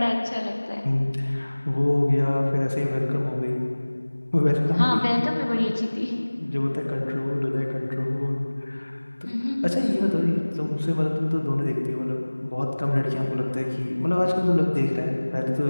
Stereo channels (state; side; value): inverted; both; correlation -1.00